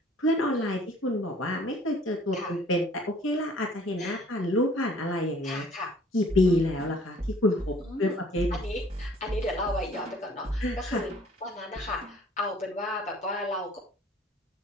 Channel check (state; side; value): normal; both; correlation 0.55